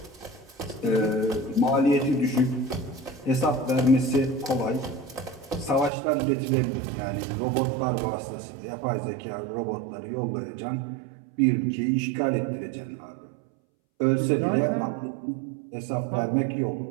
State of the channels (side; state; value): left; drops out; at 5.9 s